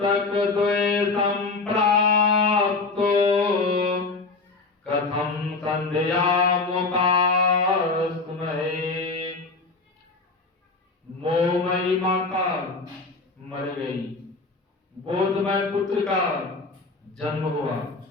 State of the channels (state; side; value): quieter; right; 3.8 dB